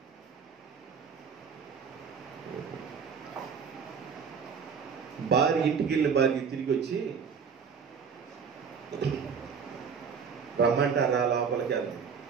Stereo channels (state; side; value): quieter; left; 6.2 dB